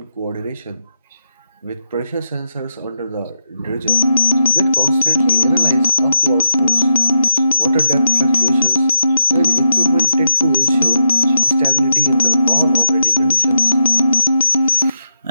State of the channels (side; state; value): both; inverted; correlation -0.85